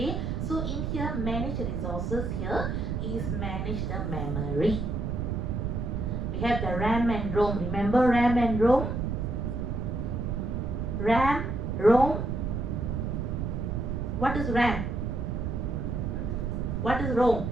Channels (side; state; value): right; noise; rumble, 1 dB below the sound